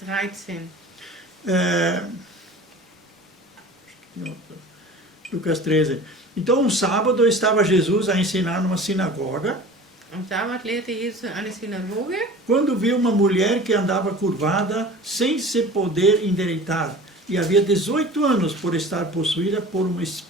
Lucas 13. Então, um sábado estava Jesus a ensinar numa sinagoga, Am Sabbat lehrte Jesus in einer Synagoge, quando viu uma mulher que andava curvada sem se poder endireitar, e havia 18 anos por estar possuída por um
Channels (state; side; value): normal; both; correlation 0.40